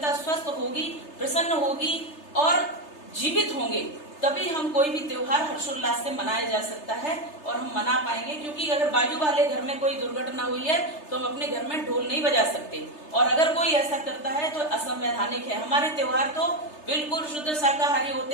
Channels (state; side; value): late; right; 3.3 ms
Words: स्वस्थ होगी, प्रसन्न होगी और जीवित होंगे, तभी हम कोई भी त्योहार हर्षोल्लास से मनाया जा सकता है और हम मना पाएंगे। क्योंकि अगर बाजू वाले घर में कोई दुर्घटना हुई है तो हम अपने घर में ढोल नहीं बजा सकते, और अगर कोई ऐसा करता है तो असंवैधानिक है। हमारे त्योहार तो बिल्कुल शुद्ध शाकाहारी